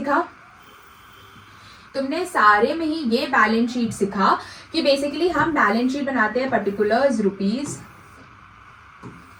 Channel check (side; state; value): both; identical; correlation 1.00